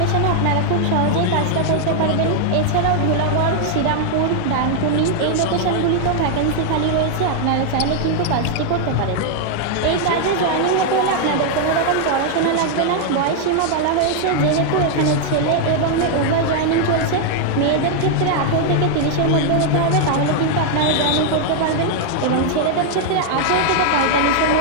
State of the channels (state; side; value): different; both; correlation 0.00